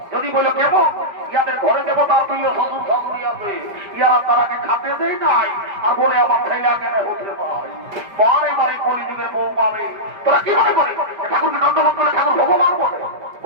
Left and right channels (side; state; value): left; late; 5.0 ms